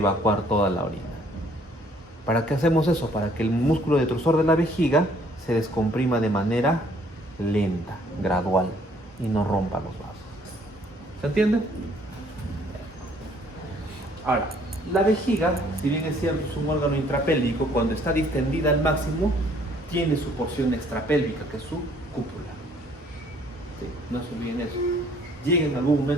toda la orina. ¿Para qué hacemos eso? Para que el músculo detrusor de la vejiga se descomprima de manera lenta, gradual, y no rompa los vasos. ¿Se entiende? Ahora, la vejiga, si bien es cierto, es un órgano intrapélvico, cuando está distendida al máximo, tiene su porción extrapélvica, que es su cúpula. Sí, no se olviden eso. Llega en algún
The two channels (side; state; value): both; normal; correlation 0.62